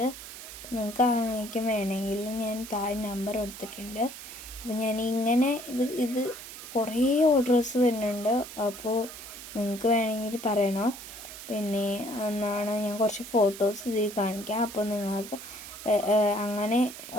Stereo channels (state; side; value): noise; right; hiss, 12 dB below the sound